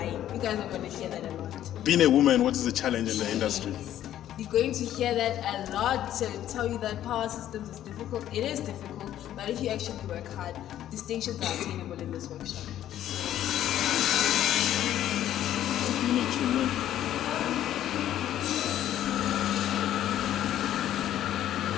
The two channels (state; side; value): quieter; right; 11.9 dB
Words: You guys are going to hear that a lot. Being a woman, what is the challenge in the industry? You're going to hear that a lot to tell you that power systems is difficult. It is difficult, but if you actually work hard, distinctions are attainable in this workshop.